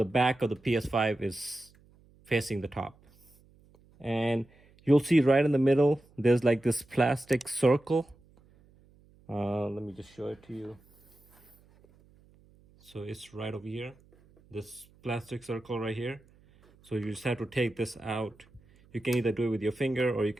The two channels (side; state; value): right; noise; hum, 29 dB below the sound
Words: back of the PS5 is facing the top. And you'll see right in the middle, there's like this plastic circle. Let me just show it to you. So it's right over here, this plastic circle right here. So you just have to take this out. You can either do it with your finger or you